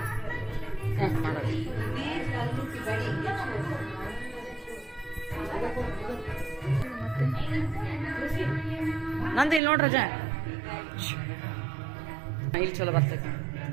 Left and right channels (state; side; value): drops out; left; at 9.6 s